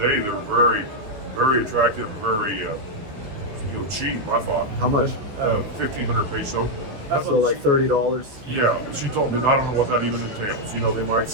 day. They're very, very attractive, very cheap. I thought how much? 1,500 peso. So like $30. Yeah, she told me I don't know what that even entails. You know, they might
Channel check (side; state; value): left; late; 14 ms